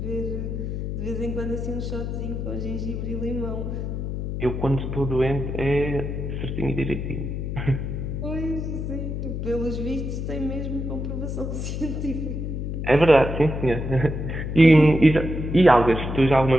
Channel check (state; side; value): noise; left; hum, 4 dB below the sound